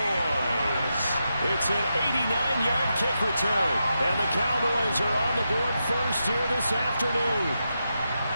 It's an 89-yard kick return, and the Cowboys are on the board first here this afternoon.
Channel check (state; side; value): inverted; both; correlation -0.87